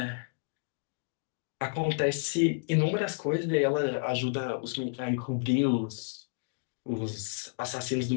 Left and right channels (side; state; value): right; silent; digital silence